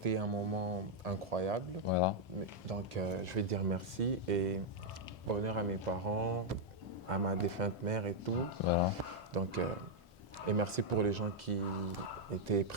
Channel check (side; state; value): both; normal; correlation -0.02